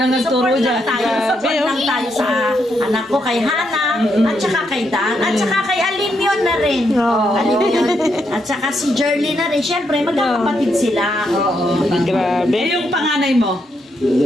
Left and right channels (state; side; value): normal; both; correlation 0.79